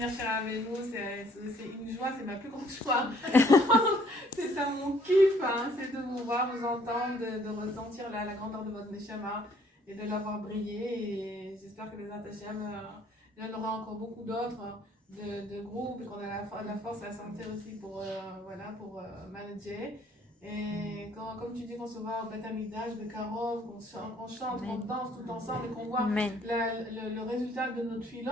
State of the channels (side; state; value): both; normal; correlation 0.62